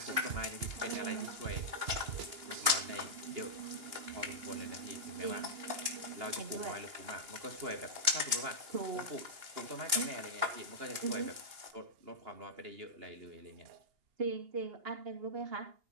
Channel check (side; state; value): left; late; 2.8 ms